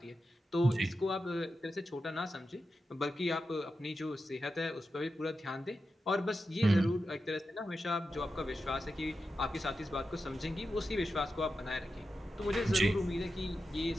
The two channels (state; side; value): normal; both; correlation 0.90